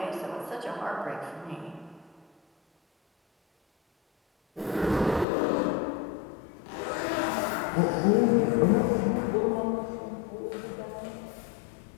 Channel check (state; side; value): drops out; right; at 5.2 s